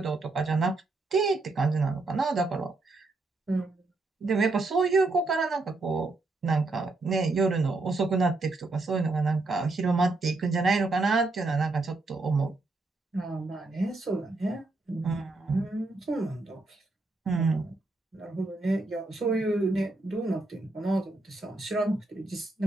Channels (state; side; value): quieter; left; 3.2 dB